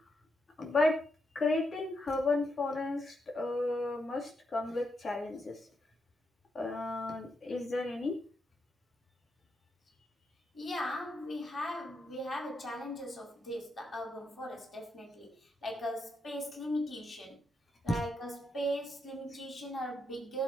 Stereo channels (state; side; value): normal; both; correlation 0.81